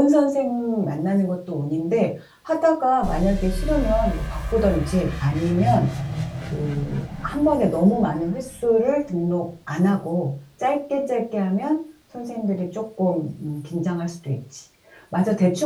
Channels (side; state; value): both; identical; correlation 1.00